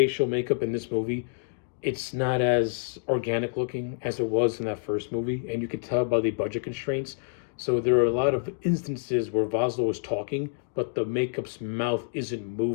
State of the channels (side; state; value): right; silent; digital silence